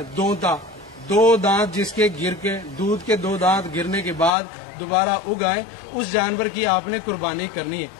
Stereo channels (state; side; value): drops out; right; at 4.3 s